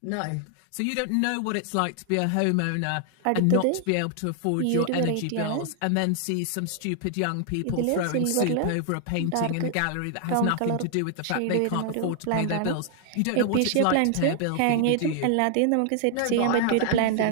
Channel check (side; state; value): both; different; correlation 0.00